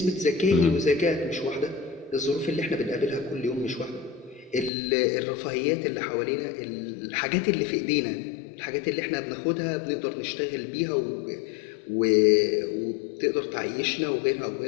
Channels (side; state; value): right; drops out; at 4.7 s